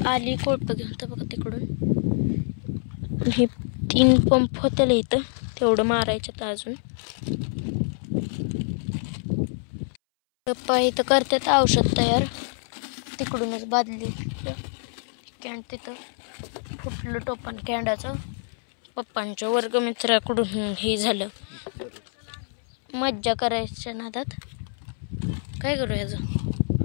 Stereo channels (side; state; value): right; silent; 61 dB below the other